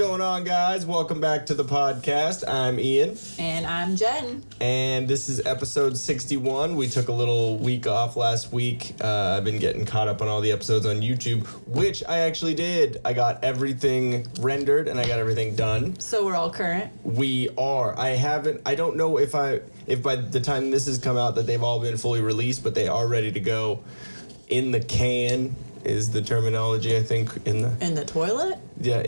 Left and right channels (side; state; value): both; inverted; correlation -1.00